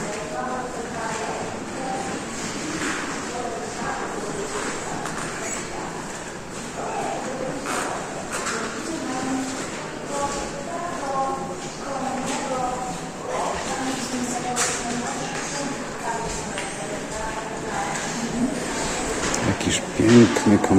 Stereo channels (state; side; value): identical; both; correlation 1.00